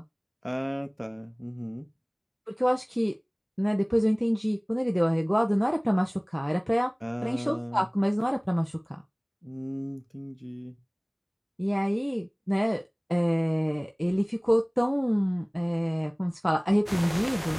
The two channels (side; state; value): both; identical; correlation 1.00